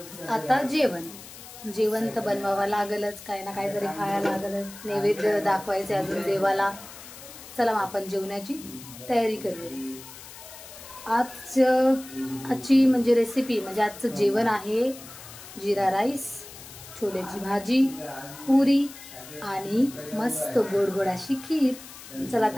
आता जेवण तर बनवावं लागलच, काही ना काहीतरी खायला लागलच, नैवेद्य दाखवायचे अजून देवाला. चला मग आपण जेवणाची तयारी करूया. आजची म्हणजे रेसिपी म्हणजे आजचं जेवण आहे जिरा राईस, छोलेची भाजी, पुरी आणि मस्त गोड गोड अशी खीर. चला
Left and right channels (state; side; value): noise; left; hiss, 16 dB below the sound